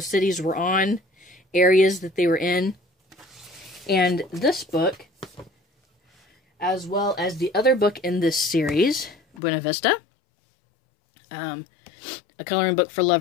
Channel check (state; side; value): drops out; right; at 9.4 s